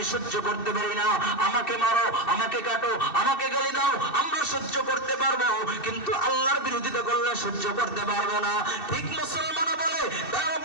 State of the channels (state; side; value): late; right; 2.7 ms